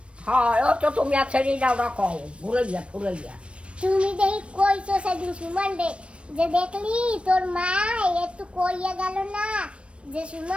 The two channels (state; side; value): late; left; 0.060 ms